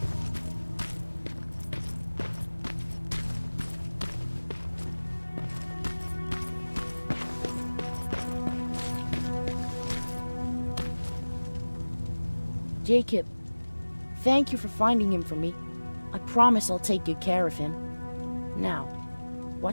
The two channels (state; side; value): inverted; both; correlation -1.00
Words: Jacob, thank you for finding him for me. I promise I'll take good care of him. Now,